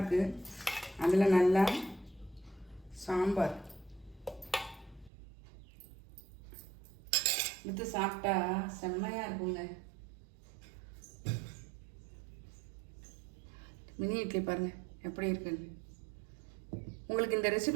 அதில் நல்லா சாம்பார் எடுத்து சாப்பிட்டா செம்மையாக இருக்குங்க. மினி இட்லி பாருங்கள் எப்படி இருக்குன்னு. உங்களுக்கு இந்த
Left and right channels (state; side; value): drops out; left; at 5.1 s